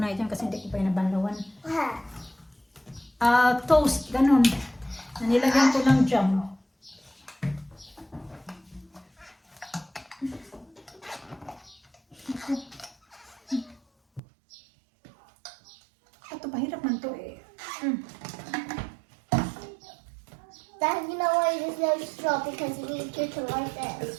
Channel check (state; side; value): drops out; left; at 14.2 s